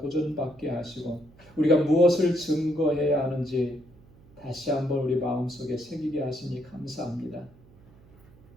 하시고 우리가 무엇을 증거해야 하는지 다시 한번 우리 마음속에 새기게 하시니 감사합니다.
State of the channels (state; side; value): noise; right; hum, 26 dB below the sound